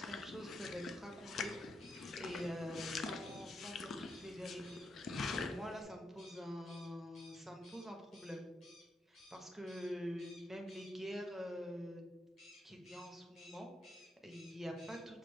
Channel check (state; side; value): normal; both; correlation 0.82